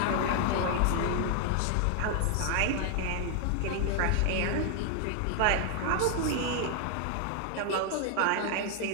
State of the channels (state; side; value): different; both; correlation 0.00